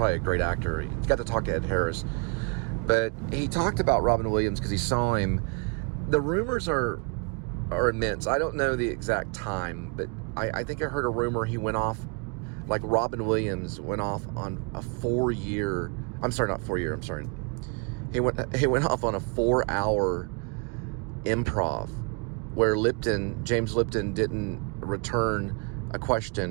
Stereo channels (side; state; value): left; quieter; 33.2 dB